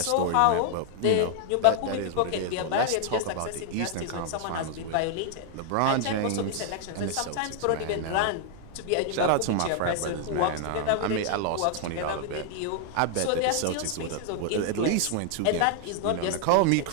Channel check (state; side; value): different; both; correlation 0.00